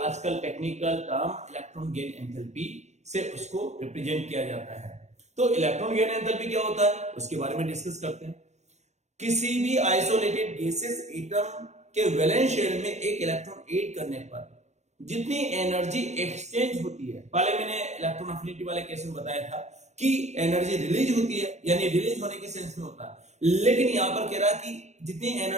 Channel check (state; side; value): late; left; 0.33 ms